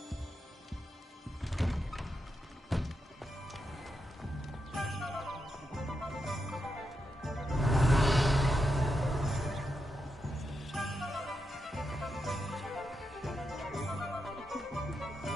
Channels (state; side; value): normal; both; correlation 0.85